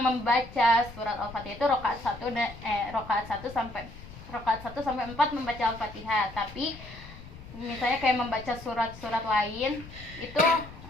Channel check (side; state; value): left; noise; rumble, 16 dB below the sound